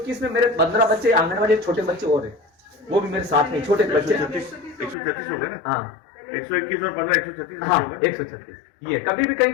में मेरे 15 बच्चे आंगनबाड़ी छोटे बच्चे और है, वो भी मेरे साथ में छोटे बच्चे। 136 हो गए ना? हाँ, 121 और 15 136 हाँ, 136। ये कभी भी कहीं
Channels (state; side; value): drops out; right; at 5.0 s